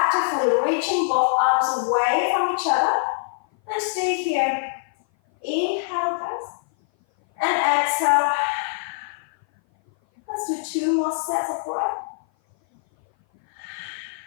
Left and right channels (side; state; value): right; silent; 57 dB below the other